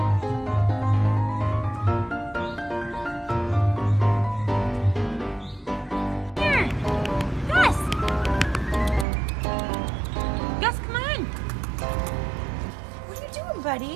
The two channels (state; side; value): drops out; left; at 9.1 s